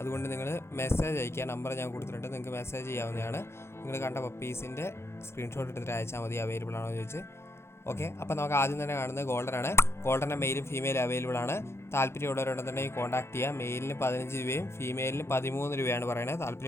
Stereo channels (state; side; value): late; right; 0.12 ms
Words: നിങ്ങൾ മെസ്സേജ് അയക്കുക. നമ്പർ ഞാൻ കൊടുത്തിട്ടുണ്ട്, നിങ്ങൾക്ക് മെസ്സേജ് ചെയ്യാവുന്നതാണ്. നിങ്ങൾ കണ്ട പപ്പീസിൻ്റെ സ്ക്രീൻഷോട്ട് എടുത്തിട്ട് അയച്ചാൽ മതി, അവൈലബിൾ ആണോ എന്ന് ചോദിച്ച്. ഓക്കെ, അപ്പോൾ നമുക്ക് ആദ്യം തന്നെ കാണുന്നത് ഗോൾഡനാണ്. ഗോൾഡൻ്റെ മെയിലും ഫീമെയിലും അവൈലബിൾ ആണ്. താല്പര്യമുള്ളവരുണ്ടെന്നുണ്ടെങ്കിൽ കോൺടാക്ട് ചെയ്യുക. മെയിലിന് 15 രൂപയും ഫീമെയിലിന് 13 രൂപയാണ് പറയുന്നത്.